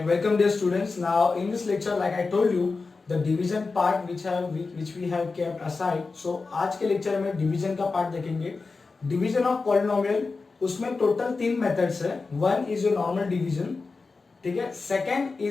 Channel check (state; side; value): quieter; right; 4.1 dB